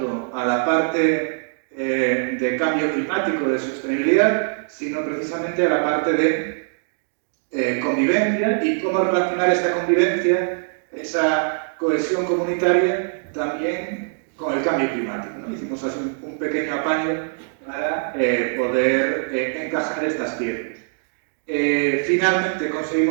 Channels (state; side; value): silent; left; digital silence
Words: a la parte de cambio climático, de sostenibilidad, sino precisamente a la parte de convivencia y cómo relacionar esta convivencia, esa cohesión comunitaria, también con el cambio climático, ¿no? Hicimos así un pequeño apaño para poder encajar estas piezas. Finalmente